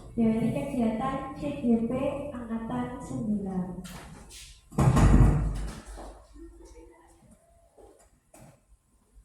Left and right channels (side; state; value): both; identical; correlation 1.00